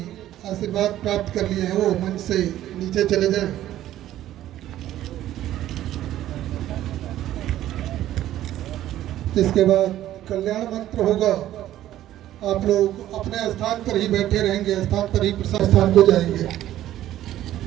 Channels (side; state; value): left; quieter; 13.1 dB